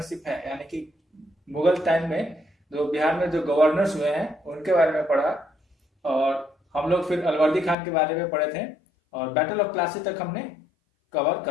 है यानी कि मुगल टाइम में जो बिहार में जो गवर्नर्स हुए हैं उनके बारे में पढ़ा और हम लोग फिर अलवर्दी खान के बारे में पढ़े थे और बैटल ऑफ प्लासी तक हमने कवर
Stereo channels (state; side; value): drops out; right; at 7.8 s